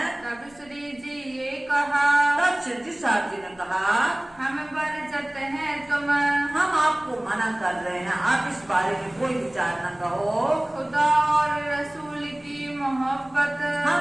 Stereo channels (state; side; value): noise; left; rumble, 27 dB below the sound